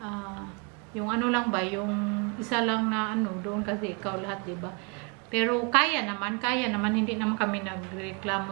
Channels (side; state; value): left; quieter; 34.0 dB